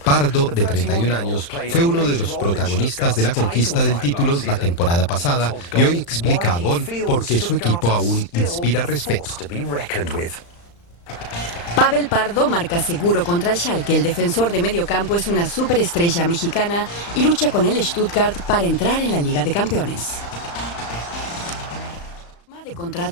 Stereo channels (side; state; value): right; late; 35 ms